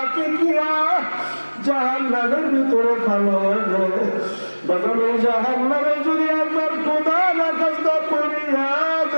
ফিকিয়া জাহান্নামের ভিতরে ফেলা। বাবা ওই জাহান্নামে যদি একবার খোদা না কষ্ট করিয়া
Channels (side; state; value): both; inverted; correlation -1.00